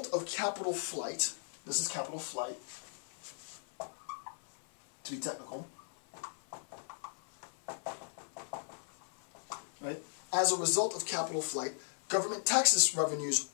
of capital flight, this is capital flight, to be technical, right? As a result of capital flight, government taxes revenues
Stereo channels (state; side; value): silent; right; 53 dB below the other